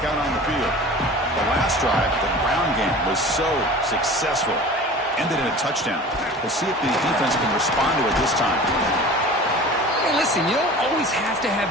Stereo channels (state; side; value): normal; both; correlation 0.39